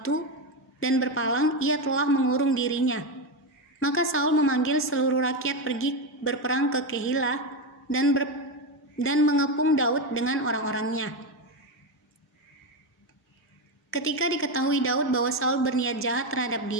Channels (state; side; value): normal; both; correlation 0.12